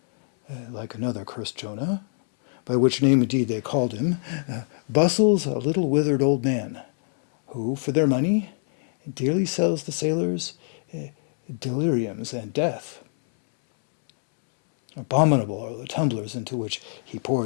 like another cursed Jonah, by which name indeed they called him, bustles a little withered old man, who, for their money, dearly sells the sailors deliriums and death. Abominable are the tumblers into which he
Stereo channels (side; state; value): right; silent; 62 dB below the other